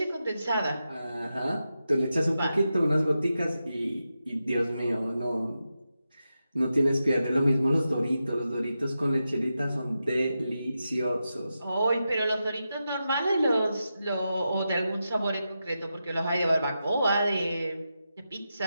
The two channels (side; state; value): both; inverted; correlation -0.89